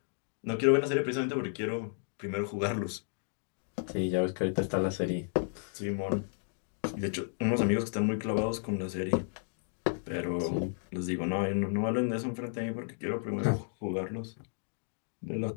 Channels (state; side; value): silent; right; digital silence